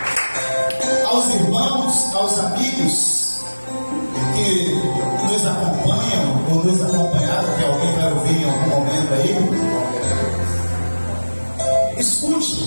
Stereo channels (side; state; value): both; inverted; correlation -1.00